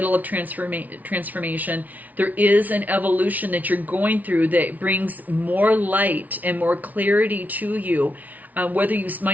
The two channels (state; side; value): late; left; 0.076 ms